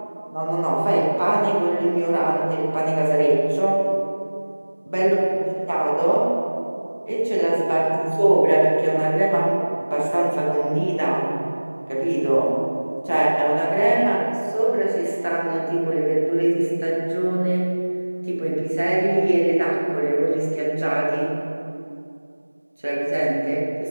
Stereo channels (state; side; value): inverted; both; correlation -1.00